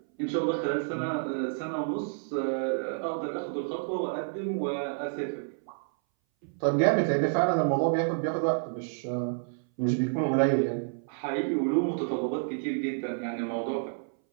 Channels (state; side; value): silent; left; 58 dB below the other